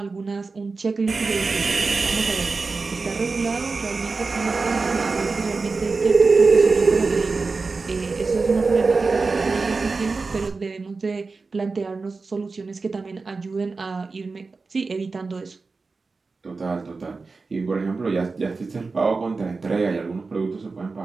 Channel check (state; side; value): quieter; left; 4.1 dB